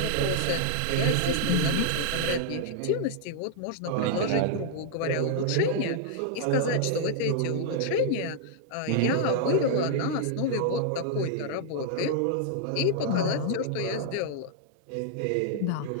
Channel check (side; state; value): both; different; correlation -0.01